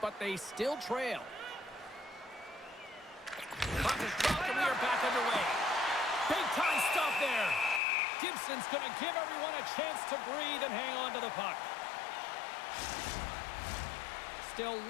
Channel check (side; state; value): right; drops out; at 7.8 s